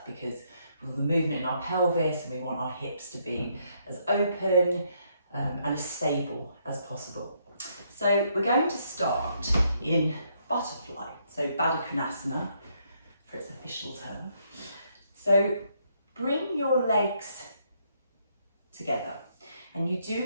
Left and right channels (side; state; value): both; inverted; correlation -0.73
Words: because with the movement in our pelvis, and we want our hips to be as open and as stable as possible. So we're going to start in butterfly, so Baddha Konasana for its official term. So bring your legs together, and you do